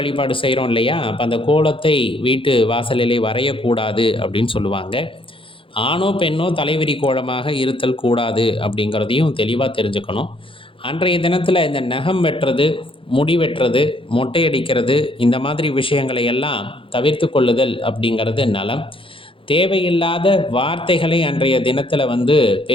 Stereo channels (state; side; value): late; right; 0.25 ms